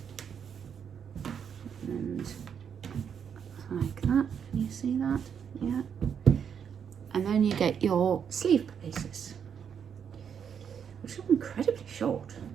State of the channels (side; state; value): left; quieter; 7.6 dB